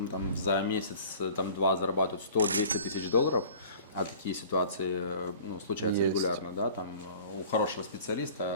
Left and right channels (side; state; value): both; inverted; correlation -0.46